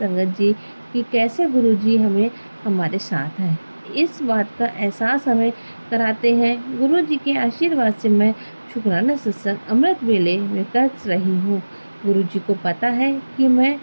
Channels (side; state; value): both; inverted; correlation -1.00